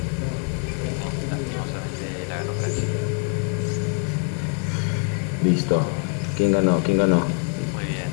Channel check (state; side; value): quieter; right; 38.9 dB